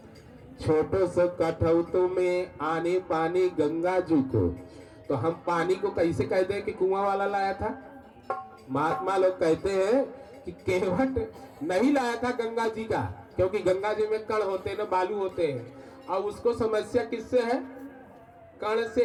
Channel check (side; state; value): both; identical; correlation 1.00